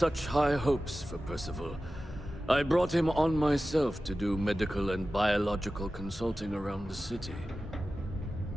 high hopes for Percival. I brought him on myself to do medical and biological consulting around the city.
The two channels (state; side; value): normal; both; correlation 0.95